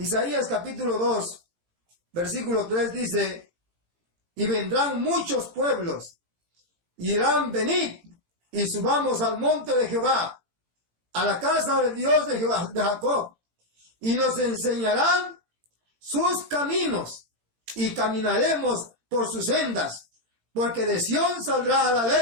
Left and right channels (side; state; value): left; late; 18 ms